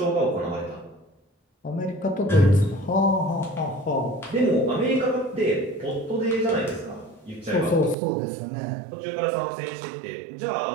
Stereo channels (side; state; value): left; drops out; at 8.0 s